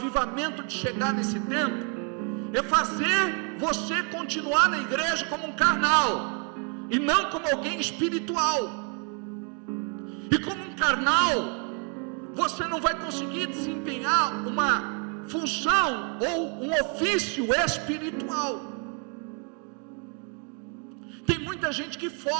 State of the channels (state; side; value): quieter; left; 38.3 dB